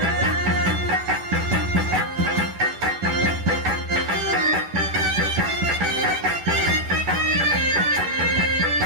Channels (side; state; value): left; late; 11 ms